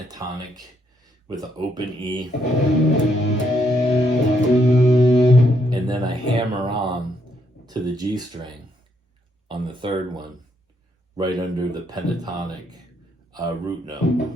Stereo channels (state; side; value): normal; both; correlation 0.74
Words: with an open E, and then I hammer on to the G string on the third one, right under the pentatonic root note.